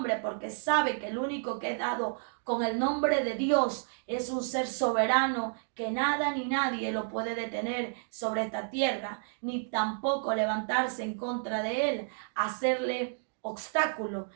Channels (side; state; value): left; silent; digital silence